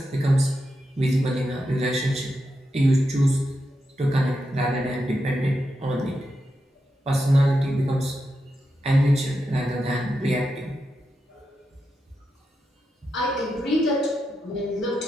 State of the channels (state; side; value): normal; both; correlation 0.87